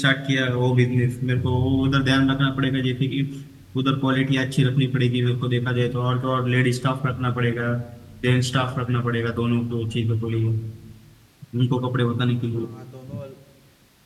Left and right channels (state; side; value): identical; both; correlation 1.00